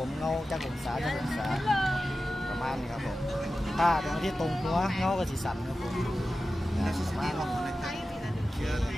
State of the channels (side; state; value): both; normal; correlation 0.94